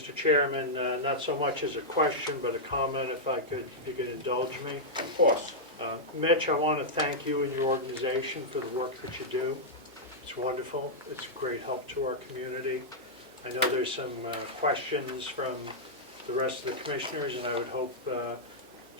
Chairman. Not so much as a question, but a comment, if you could indulge me. Of course. Mitch, I want to thank you and your organization for the work that you do. It's wonderful. It's a great help to our community. I know there's some questions from the rest of the commissioners, and I would hope,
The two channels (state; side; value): normal; both; correlation -0.08